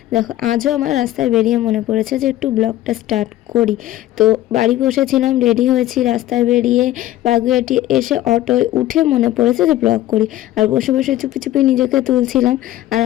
দেখো, আজও আমার রাস্তায় বেরিয়ে মনে পড়েছে যে একটু ব্লগটা স্টার্ট করি। তো বাড়ি বসেছিলাম, রেডি হয়েছি, রাস্তায় বেরিয়ে বাগুইআটি এসে অটোয় উঠে মনে পড়েছে যে ব্লগ করি। আর বসে বসে চুপি চুপি নিজেকে তুলছিলাম। আর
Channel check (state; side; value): quieter; right; 14.4 dB